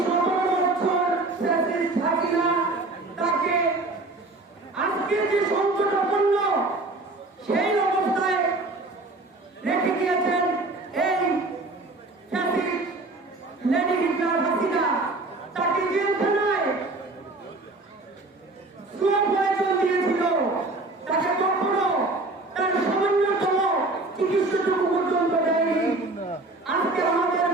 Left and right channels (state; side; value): quieter; left; 3.1 dB